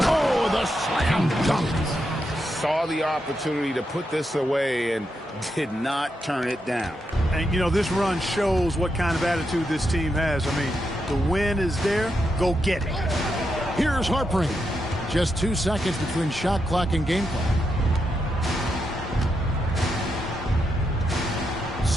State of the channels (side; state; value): both; normal; correlation 0.84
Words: the slam dunk. Saw the opportunity to put this away and did not turn it down. And, you know, this run shows what kind of attitude this team has. I mean, the win is there. Go get it. Here's Harpering. Just 2 seconds between shot clock and game clock.